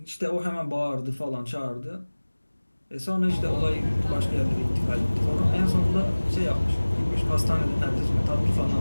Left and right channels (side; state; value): both; inverted; correlation -1.00